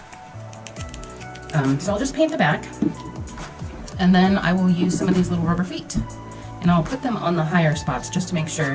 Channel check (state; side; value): identical; both; correlation 1.00